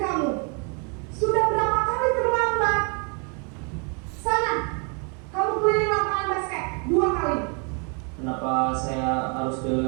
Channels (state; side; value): quieter; left; 36.9 dB